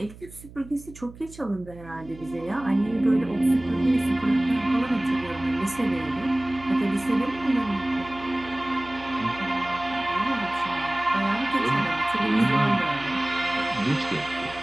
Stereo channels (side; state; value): right; noise; hum, 18 dB below the sound